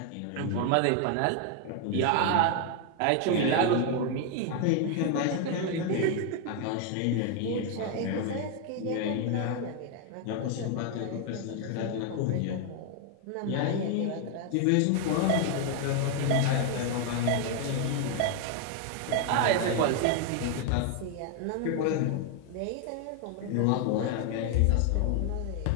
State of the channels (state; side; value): different; both; correlation 0.01